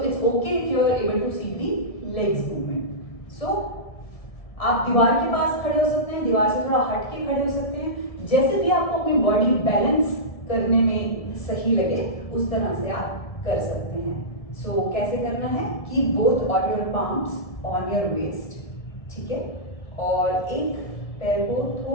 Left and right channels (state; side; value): late; right; 1.7 ms